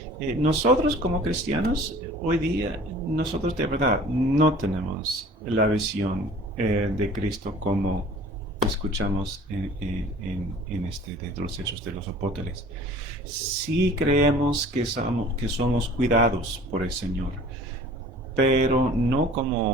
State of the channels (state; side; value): normal; both; correlation 0.47